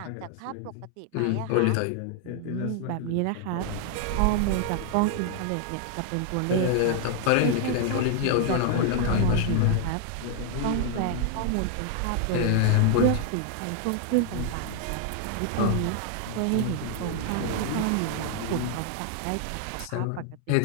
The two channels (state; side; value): different; both; correlation 0.00